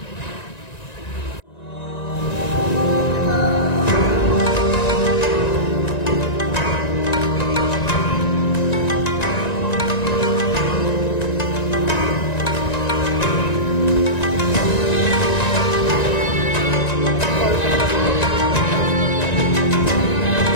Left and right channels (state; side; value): late; right; 1.9 ms